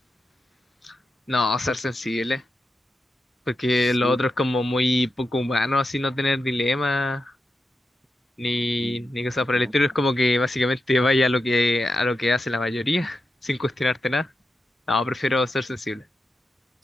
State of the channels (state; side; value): normal; both; correlation 0.89